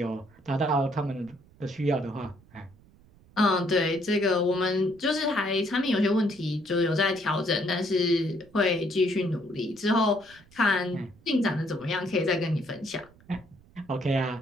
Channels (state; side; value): noise; right; rumble, 27 dB below the sound